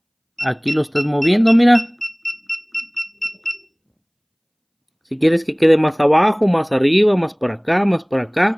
aquí lo estás moviendo, mira. Si quieres que quede más abajo, más arriba, más para acá, más para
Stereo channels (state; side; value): identical; both; correlation 1.00